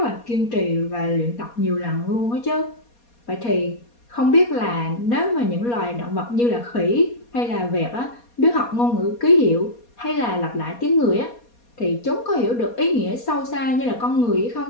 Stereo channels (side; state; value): right; late; 4.2 ms